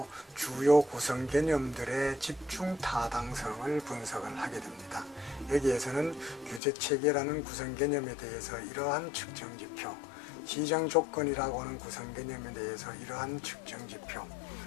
주요 구성 개념들의 집중 타당성을 분석을 하게 됩니다. 여기에서는 규제 체계라는 구성 개념에 대해서 이러한 측정 지표, 시장 조건이라고 하는 구성 개념에 대해서 이러한 측정 지표,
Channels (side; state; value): right; drops out; at 6.6 s